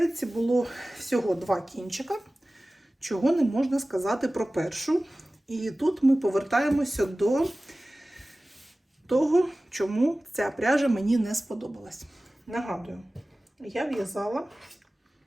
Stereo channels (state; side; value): normal; both; correlation 0.97